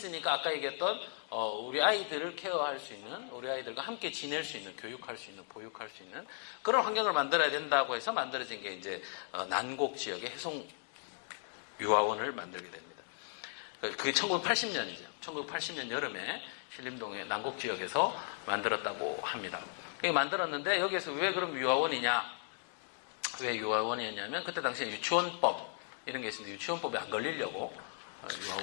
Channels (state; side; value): silent; right; 54 dB below the other